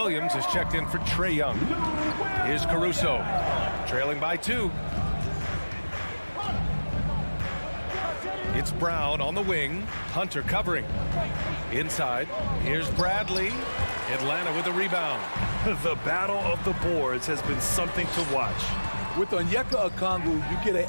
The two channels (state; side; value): inverted; both; correlation -1.00